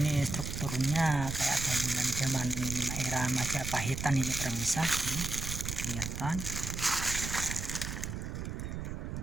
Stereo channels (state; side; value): noise; right; rumble, 5 dB below the sound